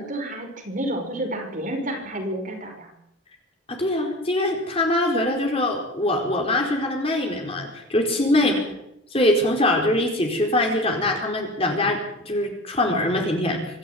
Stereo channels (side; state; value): both; normal; correlation 0.35